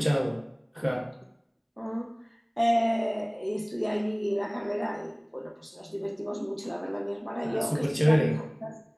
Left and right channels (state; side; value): identical; both; correlation 1.00